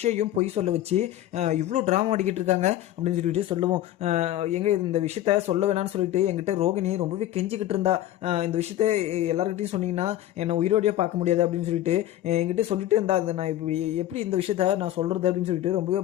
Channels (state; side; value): quieter; right; 13.3 dB